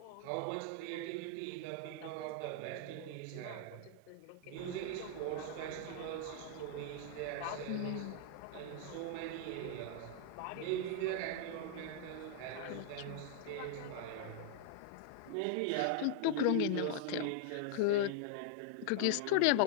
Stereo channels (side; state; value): both; different; correlation -0.01